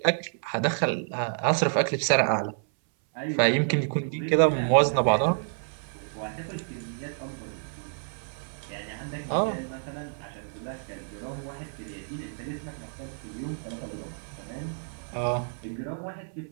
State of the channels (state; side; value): silent; left; 59 dB below the other